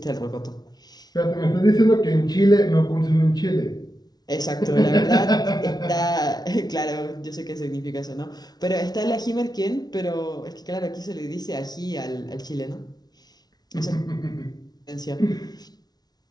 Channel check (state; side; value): late; right; 0.19 ms